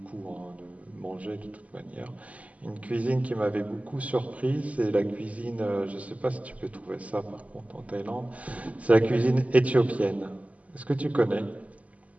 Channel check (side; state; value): left; late; 0.070 ms